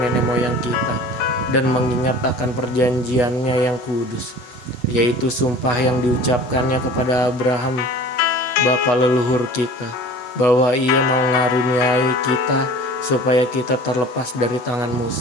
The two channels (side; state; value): right; late; 8.2 ms